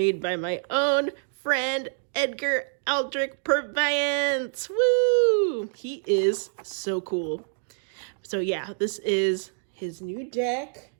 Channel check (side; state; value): left; silent; digital silence